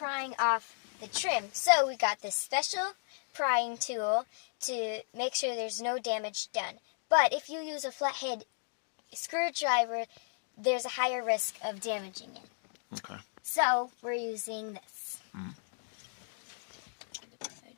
off the trim. So we got this special prying tool to make sure there's no damage done. But if you use a flathead screwdriver, there's a higher risk of damaging it. Okay. So we're using this. Mm.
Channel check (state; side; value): silent; right; digital silence